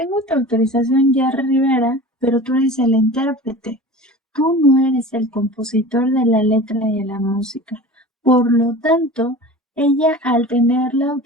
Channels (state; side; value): normal; both; correlation 0.37